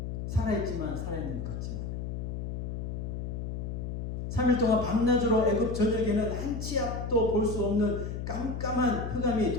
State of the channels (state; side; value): noise; left; hum, 4 dB below the sound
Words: 살아있지만 살아있는 것 같지 않아요. 3일 동안 밤낮으로 애굽 전역에는 한치 앞도 볼 수 없는 깜깜한 흑암이